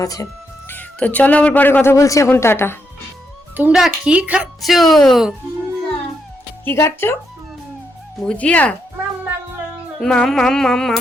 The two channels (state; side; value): normal; both; correlation 0.80